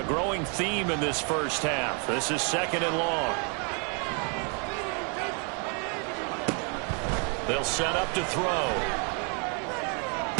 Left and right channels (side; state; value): left; quieter; 37.5 dB